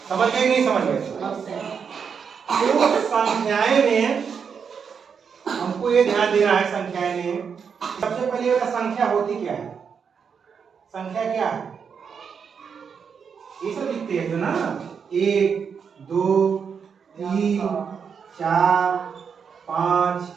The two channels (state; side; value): quieter; left; 6.5 dB